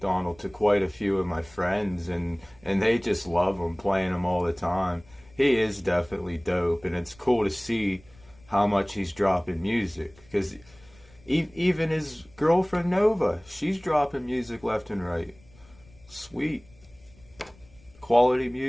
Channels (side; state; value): left; noise; rumble, 27 dB below the sound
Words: to quite a few of my friends, and they just love him, playing him all the time. He is definitely dope, and it's cool to see how much he's dropping music. Because even his girlfriend Nova, she's dropping music left and right. Sweet. Quality